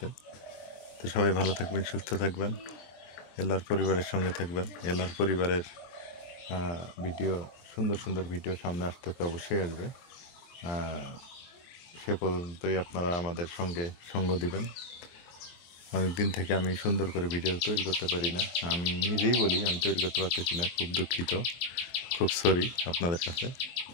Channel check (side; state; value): right; late; 23 ms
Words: তো সবাই ভালো থাকবেন, সুস্থ থাকবেন, এলার পরিবারের সঙ্গে থাকবেন। এলার পরিবারের ভিডিও, সুন্দর সুন্দর ভিডিও সামনে আসতেছে, অবশ্যই আসবে। সে পর্যন্তই আপনারা আমাদের সঙ্গে সঙ্গ দিবেন। অনেক দিন থেকে আমি সুন্দর করে ভিডিও তৈরি করতে পারি না, আমি নিজেই বলি আমি তৈরি করতে পারতেছি না। খুব দুঃখিত, খুব সরি আপনাদের কাছে।